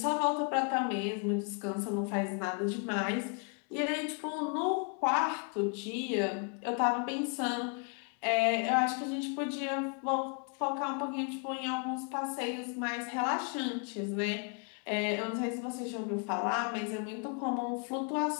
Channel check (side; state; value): right; quieter; 38.7 dB